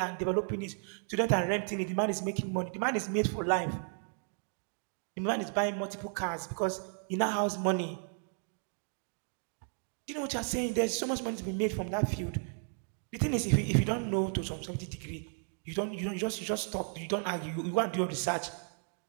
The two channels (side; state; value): left; silent; 55 dB below the other